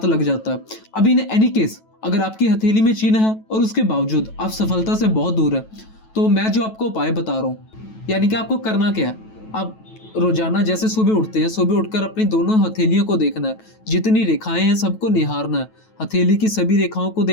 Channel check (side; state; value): right; late; 9.2 ms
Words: लग जाता है। अब इन एनी केस, अगर आपकी हथेली में चिन्ह है और उसके बावजूद आप सफलता से बहुत दूर है, तो मैं जो आपको उपाय बता रहा हूँ, यानी कि आपको करना क्या है, आप रोजाना जैसे सुबह उठते हैं, सुबह उठकर अपनी दोनों हथेलियों को देखना है, जितनी रेखाएं हैं सबको निहारना है, हथेली की सभी रेखाओं को